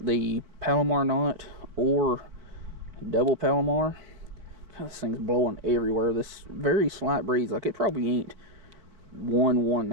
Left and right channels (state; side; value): late; left; 4.3 ms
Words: Palomar knot or double Palomar. God, this thing's blowing everywhere. This very slight breeze, like it probably ain't